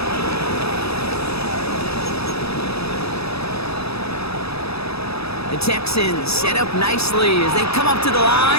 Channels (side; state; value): right; late; 0.78 ms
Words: The Texans set up nicely as they come up to the